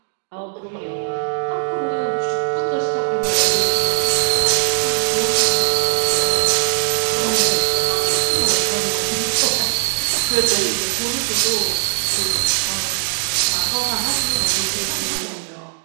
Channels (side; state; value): left; silent; digital silence